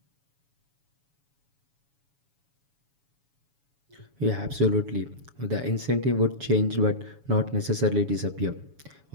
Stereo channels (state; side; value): late; left; 7.1 ms